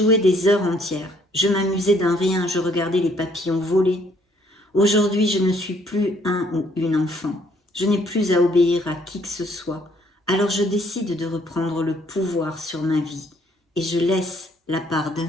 des heures entières. Je m'amusais d'un rien, je regardais les papillons voler. Aujourd'hui, je ne suis plus un ou une enfant. Je n'ai plus à obéir à qui que ce soit. Alors je décide de reprendre le pouvoir sur ma vie et je laisse la part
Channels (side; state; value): both; normal; correlation 0.65